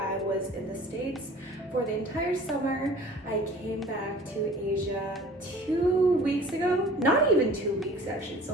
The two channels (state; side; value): normal; both; correlation 0.46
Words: was in the States for the entire summer. I came back to Asia 2 weeks ago. Not even 2 weeks actually, it's